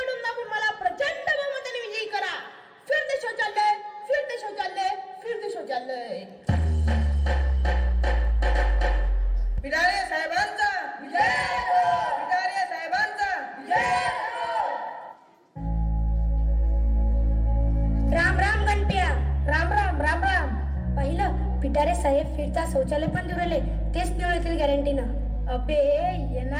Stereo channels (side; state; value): both; identical; correlation 1.00